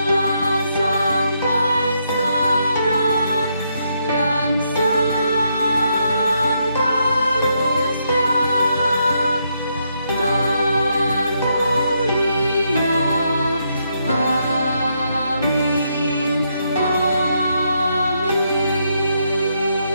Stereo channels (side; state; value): both; inverted; correlation -0.78